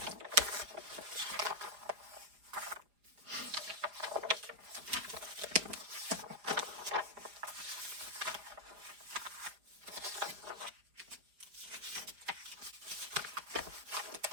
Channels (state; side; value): late; left; 4.9 ms